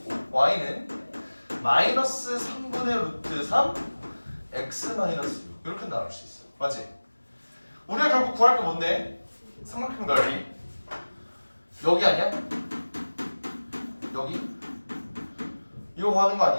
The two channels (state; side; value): inverted; both; correlation -1.00